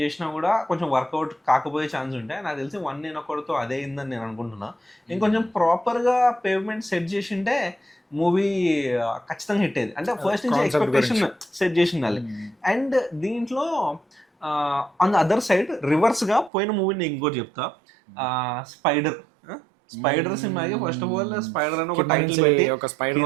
చేసినా కూడా కొంచెం వర్కౌట్ కాకపోయే ఛాన్స్ ఉంటాయి. నాకు తెలిసి వన్ నేను ఒకటితో అదే అయిందని నేను అనుకుంటున్నా. ఇంకొంచెం ప్రాపర్గా పేమెంట్ సెట్ చేసింటే మూవీ ఖచ్చితంగా హిట్ అయ్యేది. అంటే ఫస్ట్ నుంచి ఎక్స్పెక్టేషన్ సెట్ చేసి ఉండాలి. అండ్ దీంట్లో ఆన్ ద అదర్ సైడ్ రివర్స్గా పోయిన మూవీని ఇంకోటి చెప్తా, స్పైడర్ సినిమాకి ఫస్ట్ ఆఫ్ ఆల్ స్పైడర్ అని ఒక టైటిల్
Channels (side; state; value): left; drops out; at 16.5 s